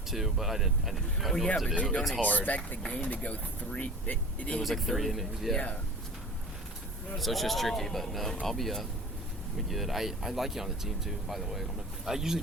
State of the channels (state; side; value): normal; both; correlation 0.39